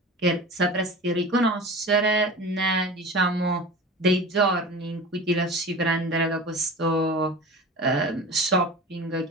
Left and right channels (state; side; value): normal; both; correlation 0.34